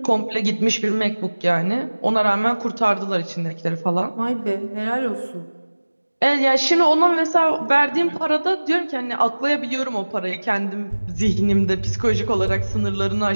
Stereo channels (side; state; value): both; inverted; correlation -1.00